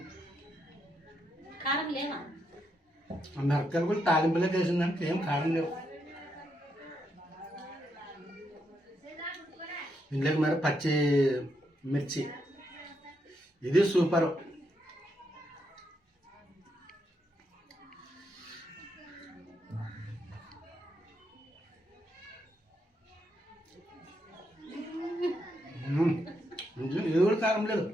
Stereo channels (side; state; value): both; normal; correlation 0.80